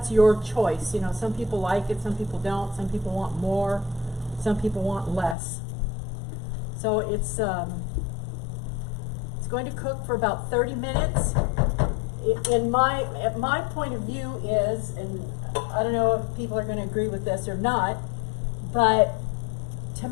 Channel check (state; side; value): drops out; right; at 5.4 s